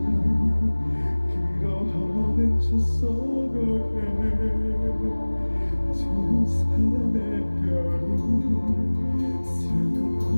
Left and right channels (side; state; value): both; inverted; correlation -1.00